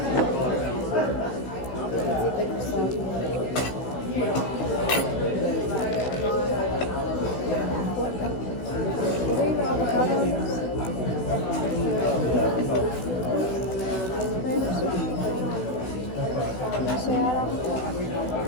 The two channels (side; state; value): right; late; 16 ms